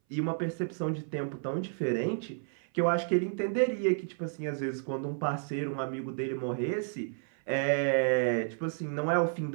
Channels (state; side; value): silent; left; 57 dB below the other